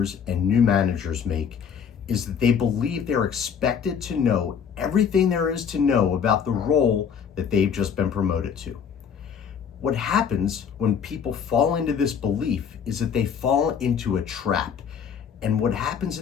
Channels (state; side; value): quieter; right; 7.3 dB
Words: and new managers make is that they believe they're expected to know everything there is to know about the role that they've just been promoted to. What happens when people fall into this belief is that they fall into a trap. And what happens